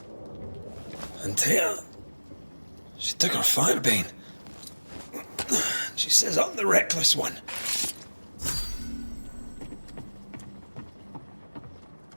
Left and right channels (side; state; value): both; inverted; correlation -1.00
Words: Antea, she took her firebane. She says I'm the reckless one.